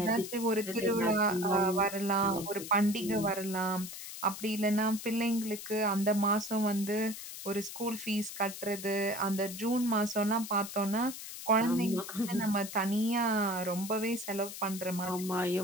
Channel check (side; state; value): left; noise; hiss, 10 dB below the sound